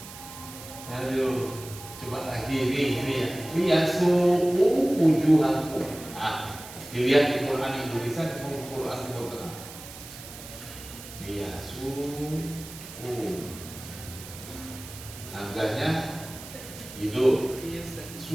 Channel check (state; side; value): noise; right; hiss, 14 dB below the sound